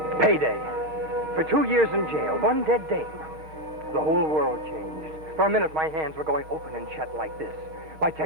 Payday. For 2 years in jail, one dead dame. The whole world changed. For a minute, my hands were going open and shut like this. My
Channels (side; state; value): left; late; 6.8 ms